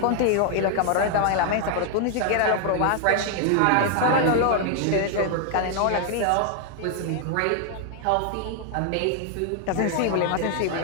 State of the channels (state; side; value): different; both; correlation 0.00